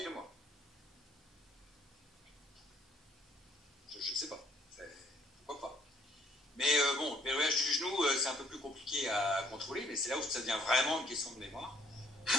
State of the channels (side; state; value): both; normal; correlation 0.63